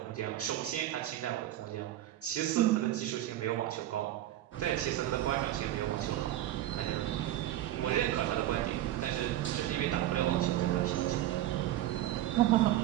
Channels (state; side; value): quieter; left; 13.7 dB